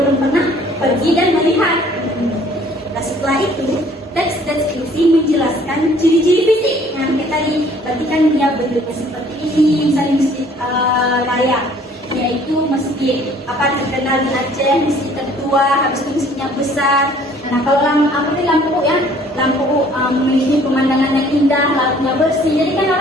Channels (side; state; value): both; normal; correlation 0.56